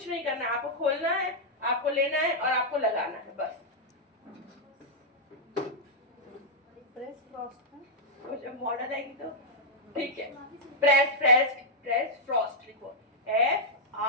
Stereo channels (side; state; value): both; normal; correlation -0.07